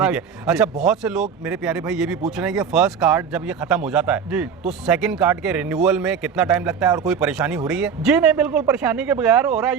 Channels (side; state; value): left; quieter; 6.7 dB